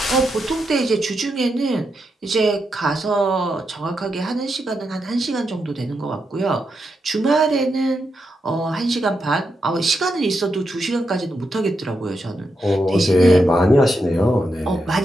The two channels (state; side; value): normal; both; correlation 0.84